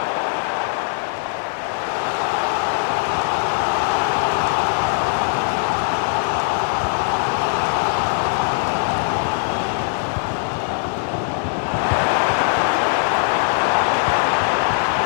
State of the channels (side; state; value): right; silent; 58 dB below the other